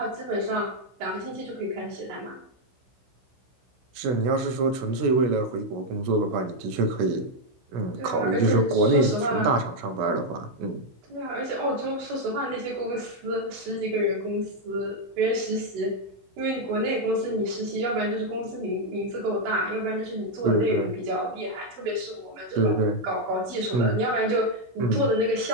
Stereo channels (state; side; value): late; left; 16 ms